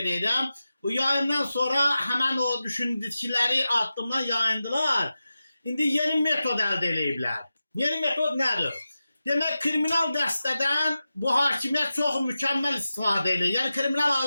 Bu yayından sonra həmən o düşündükləri addımdan yayındılar. İndi yeni metod əldə ediblər. Yeni metod nədir? Demək, kriminal dəstədən bu hakimiyyət çox mükəmməl istifadə edir. Yəni, kriminal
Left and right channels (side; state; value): both; inverted; correlation -0.93